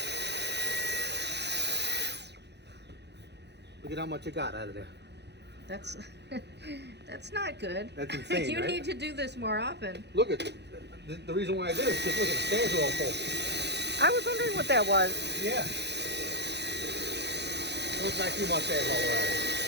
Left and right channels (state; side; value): late; left; 0.50 ms